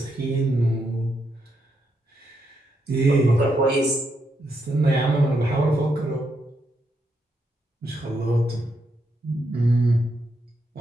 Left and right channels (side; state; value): both; normal; correlation 0.80